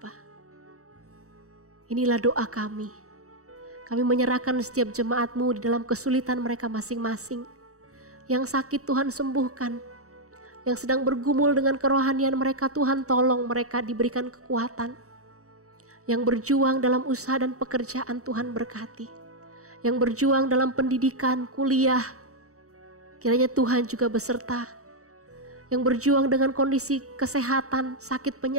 Inilah doa kami. Kami menyerahkan setiap jemaat-Mu di dalam kesulitan mereka masing-masing. Yang sakit Tuhan sembuhkan. Yang sedang bergumul dengan kerohanian mereka, Tuhan tolong mereka diberikan kekuatan. Yang berjuang dalam usaha dan pekerjaan, Tuhan berkati. Yang berjuang dalam pendidikan, kuliah, kiranya Tuhan juga beserta. Yang berjuang dengan kondisi kesehatan, sakit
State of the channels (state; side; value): late; left; 0.65 ms